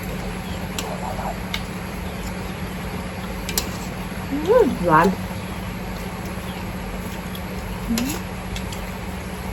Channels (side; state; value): both; identical; correlation 1.00